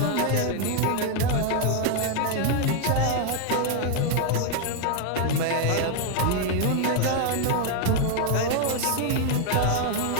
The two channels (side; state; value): both; different; correlation 0.00